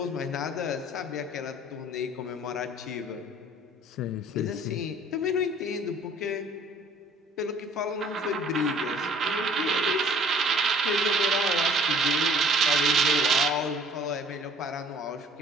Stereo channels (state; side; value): normal; both; correlation 0.53